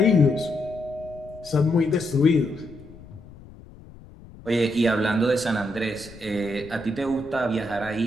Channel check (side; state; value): left; noise; rumble, 19 dB below the sound